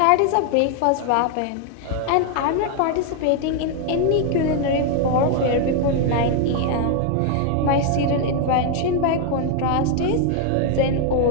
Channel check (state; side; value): different; both; correlation 0.00